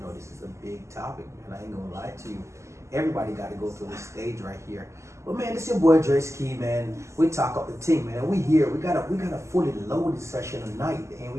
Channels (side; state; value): left; late; 0.14 ms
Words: this is a big topic, man. I ain't gonna lie to you. Everybody got to go through this stage right here. But man, it's your boy Dre Ski, man. We talk up the team, man. We here. We got a fully loaded session tonight, and